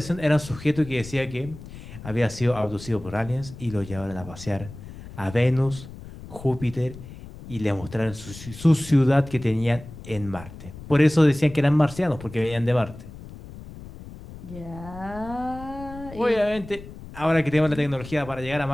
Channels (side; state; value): left; noise; rumble, 15 dB below the sound